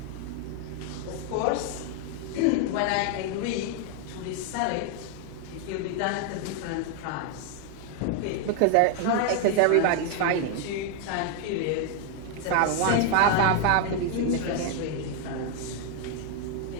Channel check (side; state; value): both; different; correlation 0.00